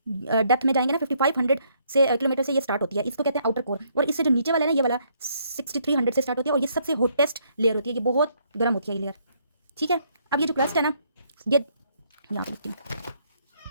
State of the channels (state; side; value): inverted; both; correlation -0.70